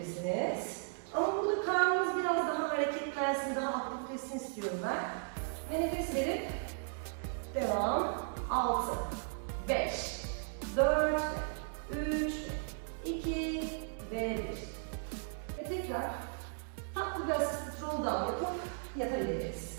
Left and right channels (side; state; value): left; silent; 54 dB below the other